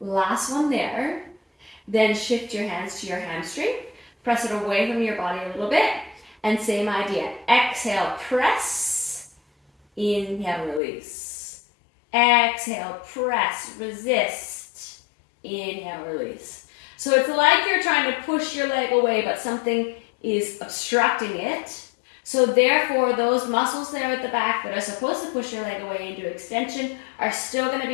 Last one there. Then shift your hands to your hamstring. Press it away from your body a little bit. And same idea. Exhale, press. Inhale, release. Exhale, press, resist. Inhale, release. So it's like you're trying to push your leg away, but something is obstructing it. So therefore, those muscles there at the back that are supposed to push your leg away into extension are still going to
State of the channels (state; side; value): drops out; right; at 10.8 s